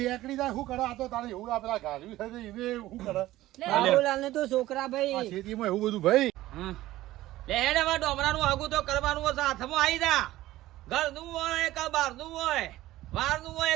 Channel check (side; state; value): left; quieter; 16.0 dB